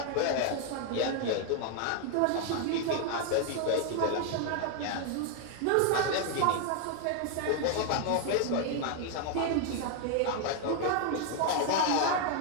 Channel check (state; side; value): different; both; correlation 0.01